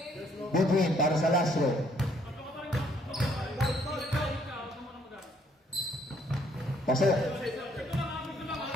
Between, para sa last row. Pasok.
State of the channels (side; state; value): both; normal; correlation 0.66